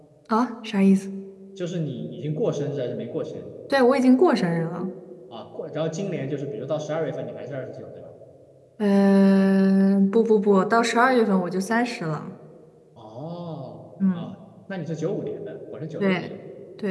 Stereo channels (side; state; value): both; identical; correlation 1.00